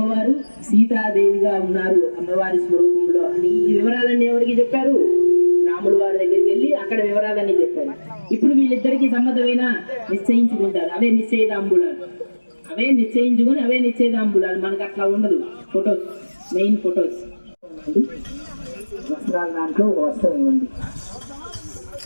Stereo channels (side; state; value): both; inverted; correlation -1.00